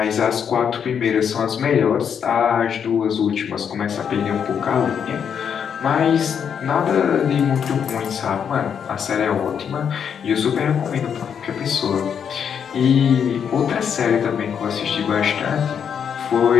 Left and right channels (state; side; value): quieter; right; 7.7 dB